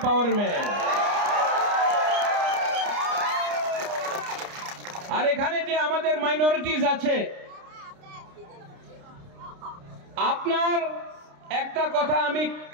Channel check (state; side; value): late; left; 29 ms